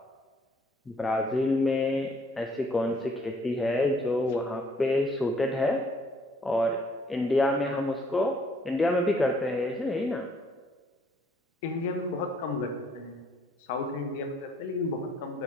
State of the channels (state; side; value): normal; both; correlation 0.64